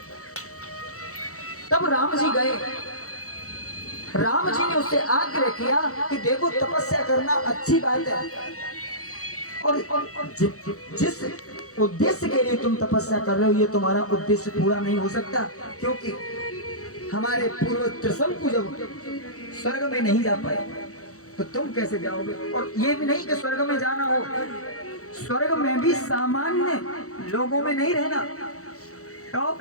तब राम जी गए। राम जी ने उससे आग्रह किया कि देखो तपस्या करना अच्छी बात है, और जिस उद्देश्य के लिए तुम तपस्या कर रहे हो ये तुम्हारा उद्देश्य पूरा नहीं हो सकता, क्योंकि हमारे पूर्व त्रिशंकु जब स्वर्ग में नहीं जा पाए तो तुम कैसे जाओगे? और ये भी नहीं कि स्वर्ग में जाना हो, स्वर्ग में भी सामान्य लोगों में नहीं रहना। तो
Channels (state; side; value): late; right; 0.65 ms